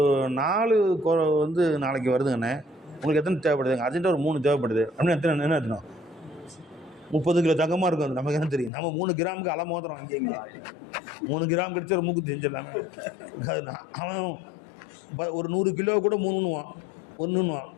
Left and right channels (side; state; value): right; drops out; at 8.7 s